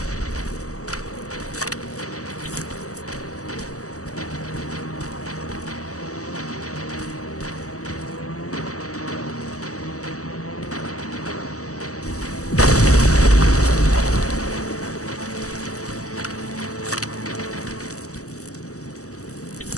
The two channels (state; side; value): late; right; 0.66 ms